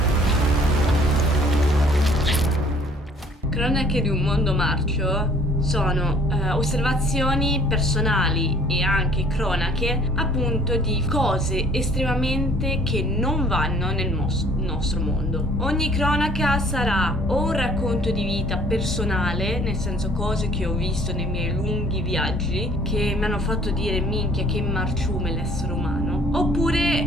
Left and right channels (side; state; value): both; normal; correlation 0.56